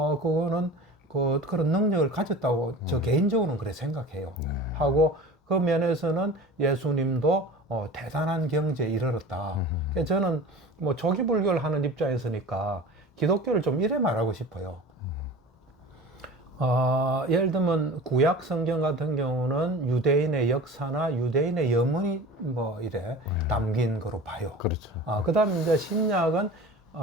그런 능력을 가졌다고 저 개인적으로는 그래 생각해요. 하고 그 면에서는 예수님도 대단한 경지에 이르렀다. 그래서 저는 뭐 초기 불교를 하는 입장에서니까 기독교를 좀 이래 말하고 싶어요. 예를 들면 구약 성경 같은 경우는 유대인의 역사나 유대인의 염원이 뭐 이래 담긴 거로 봐요. 그렇죠. 그 다음에 이제 신약은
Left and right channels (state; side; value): normal; both; correlation 0.37